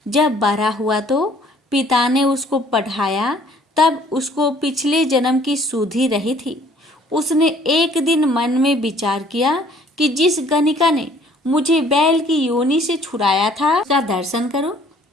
जब बड़ा हुआ तो पिता ने उसको पढ़ाया। तब उसको पिछले जन्म की सुधि रही थी। उसने एक दिन मन में विचार किया कि जिस गणिका ने मुझे बैल की योनि से छुड़ाया था उसका दर्शन करो।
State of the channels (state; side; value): normal; both; correlation 0.58